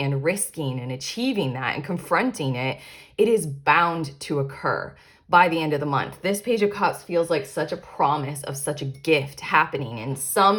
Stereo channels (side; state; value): both; identical; correlation 1.00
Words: risking and achieving that and confronting it. It is bound to occur by the end of the month. This Page of Cups feels like such a promise of such a gift happening in